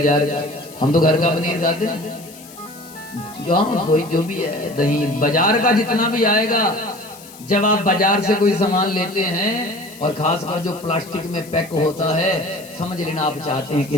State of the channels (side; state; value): left; noise; hiss, 19 dB below the sound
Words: का। हम तो घर का पनीर खाते हैं, कोई जो भी है, दही बाजार का जितना भी आएगा। जब आप बाजार से कोई सामान लेते हैं, और खासकर जो प्लास्टिक में पैक होता है, समझ लेना आप चाहते हैं कि